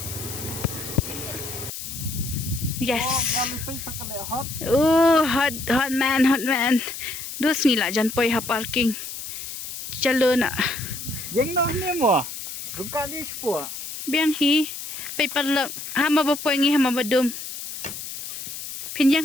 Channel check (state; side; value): noise; left; hiss, 8 dB below the sound